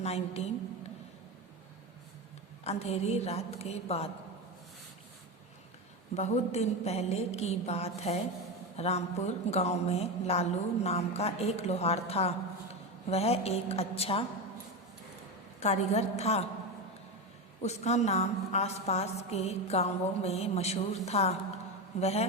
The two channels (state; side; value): normal; both; correlation 0.17